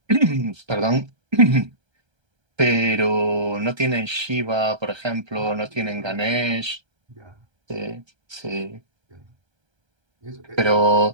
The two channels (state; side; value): late; left; 1.3 ms